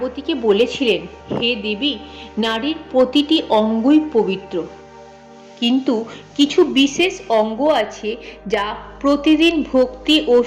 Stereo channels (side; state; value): both; identical; correlation 1.00